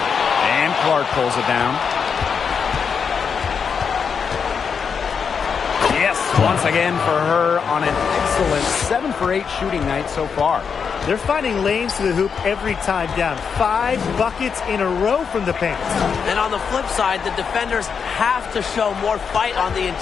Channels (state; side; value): quieter; right; 6.3 dB